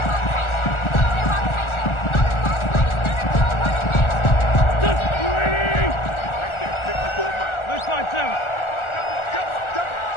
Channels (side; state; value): right; late; 1.4 ms